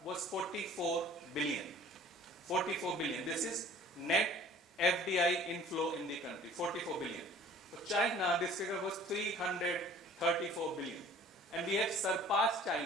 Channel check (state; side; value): normal; both; correlation 0.49